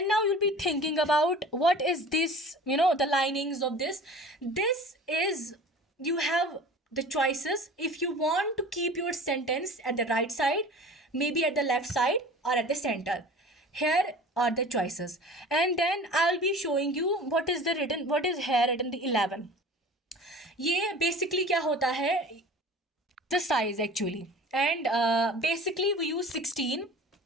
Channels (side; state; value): both; normal; correlation 0.41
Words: now you'll be thinking about what is this, the linings of this. This is, you have the choices. If you want to keep your sentence at the right side, maybe at the left side or at the center. Here are the choices. And then I'll be showing you what is here written the 11. ये basically क्या होता है, the size actually. And basically we use 16.